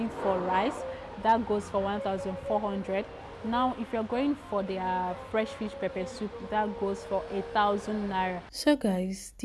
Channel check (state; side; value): identical; both; correlation 1.00